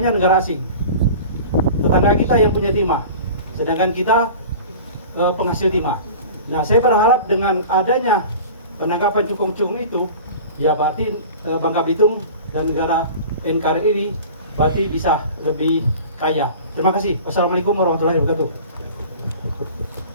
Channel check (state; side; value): inverted; both; correlation -0.39